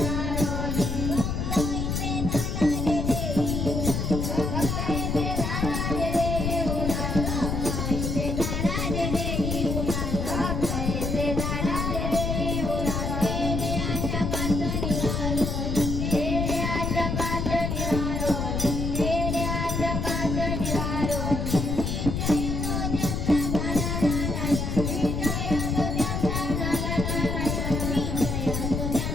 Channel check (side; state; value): left; noise; rumble, 1 dB below the sound